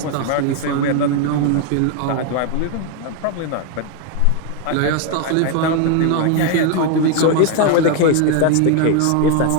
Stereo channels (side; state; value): both; different; correlation 0.01